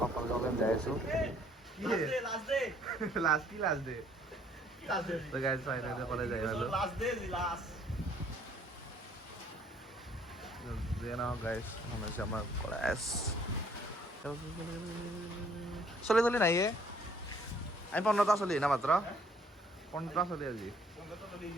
যাই আছোঁ। কলেজ যাই পালোঁ। গাইজ হৈছে আমাৰ কলেজ। চলি নাই আমি 15টা চলি না মাত্ৰ 15টা চলি আজি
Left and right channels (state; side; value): normal; both; correlation 0.61